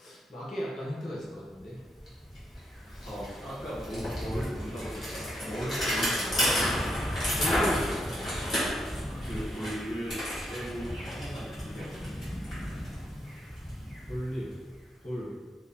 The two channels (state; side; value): normal; both; correlation 0.80